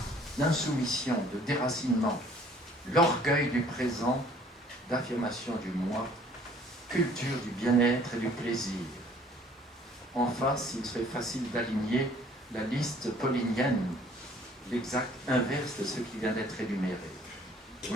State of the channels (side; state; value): both; normal; correlation 0.56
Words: d'insoumission, de déracinement, l'orgueil du présent, d'affirmation du moi, culture du bien-être et du plaisir. En face, il serait facile d'aligner la liste paulinienne, l'exact inverse de ce qui vient d'être énuméré.